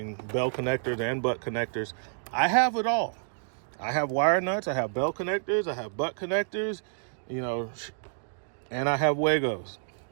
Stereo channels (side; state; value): left; silent; digital silence